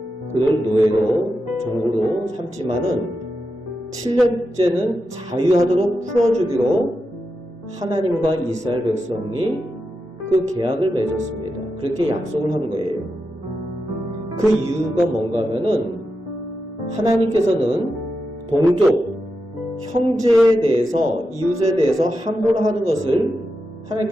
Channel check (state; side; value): normal; both; correlation 0.88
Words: 그를 노예로 종으로 삼지만은 7년째는 자유하도록 풀어주기로 하나님과 이스라엘 백성이 그 계약을 맺었습니다. 그렇게 약속을 한 거예요. 그 이유가 뭔가 하면은 하나님께서는 동족, 형제에 대해서, 이웃에 대해서 함부로 하는 것을